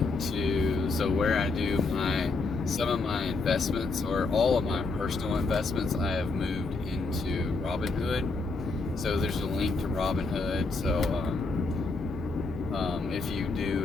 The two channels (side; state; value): right; quieter; 3.8 dB